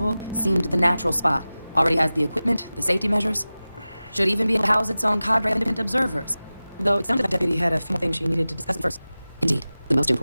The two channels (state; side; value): inverted; both; correlation -0.97